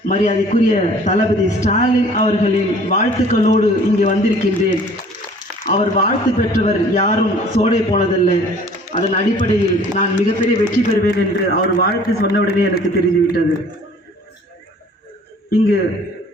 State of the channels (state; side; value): normal; both; correlation 0.52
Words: மரியாதைக்குரிய தளபதி ஸ்டாலின் அவர்களின் வாழ்த்துக்களோடு இங்கே வந்திருக்கின்றேன். அவர் வாழ்த்து பெற்றவர் யாரும் சோடை போனதில்லை. அதன் அடிப்படையில் நான் மிகப்பெரிய வெற்றி பெறுவேன் என்று அவர் வாழ்த்து சொன்னவுடனே எனக்கு தெரிந்துவிட்டது. இங்கு